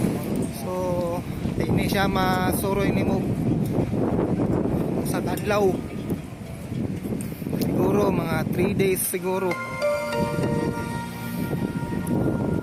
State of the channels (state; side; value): identical; both; correlation 1.00